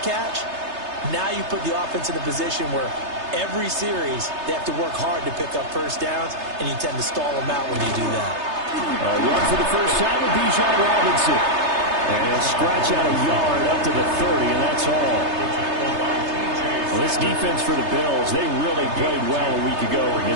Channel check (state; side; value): late; left; 3.3 ms